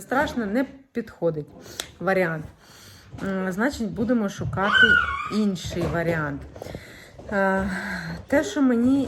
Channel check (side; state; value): both; identical; correlation 1.00